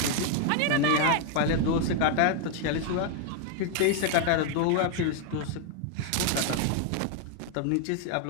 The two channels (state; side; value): different; both; correlation 0.01